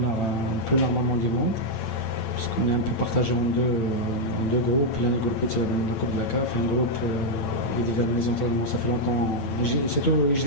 plus normalement du monde, parce qu'on est un peu partagé en deux groupes. L'un des groupes c'est le groupe de la CAF, un groupe qui dit les entraînements, ça fait longtemps, c'est tout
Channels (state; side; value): late; right; 8.9 ms